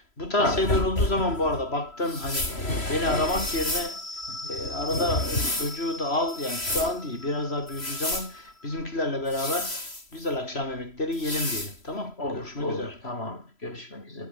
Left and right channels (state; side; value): late; right; 3.0 ms